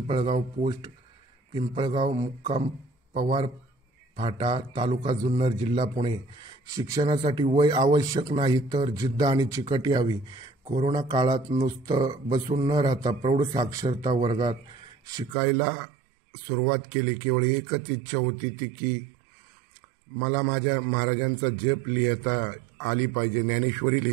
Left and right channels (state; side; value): drops out; left; at 15.4 s